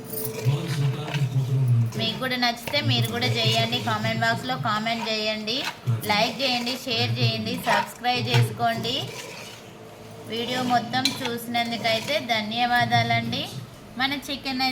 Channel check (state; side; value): identical; both; correlation 1.00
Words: మీకు కూడా నచ్చితే మీరు కూడా చేయండి. కామెంట్ బాక్స్లో కామెంట్ చేయండి, లైక్ చేయండి, షేర్ చేయండి, సబ్స్క్రైబ్ చేసుకోండి. వీడియో మొత్తం చూసినందుకైతే ధన్యవాదాలండి. మన చికెన్